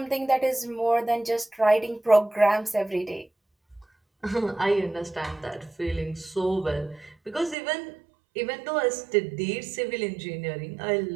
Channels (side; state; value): left; drops out; at 7.6 s